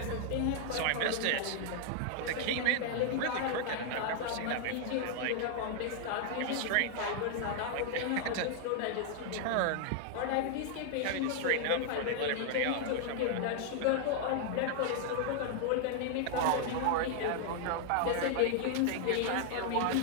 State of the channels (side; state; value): both; different; correlation 0.00